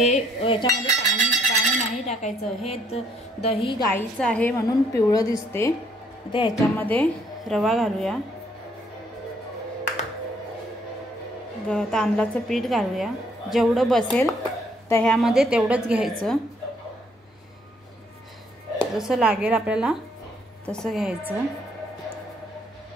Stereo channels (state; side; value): normal; both; correlation 0.67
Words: नाही टाकायचं। हे दही गाईचं आहे म्हणून पिवळं दिसते। आता ह्याच्यामध्ये रवा घालूया, तांदळाचं पीठ घालूया, जेवढं बसेल दह्यामध्ये तेवढंच घ्यायचं, जसं लागेल आपल्याला तसं घ्यायचं।